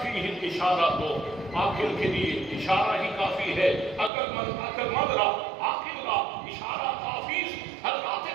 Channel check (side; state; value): left; drops out; at 4.1 s